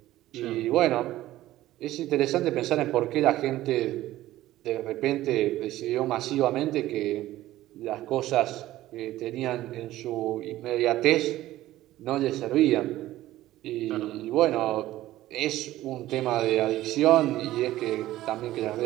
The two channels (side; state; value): left; quieter; 15.3 dB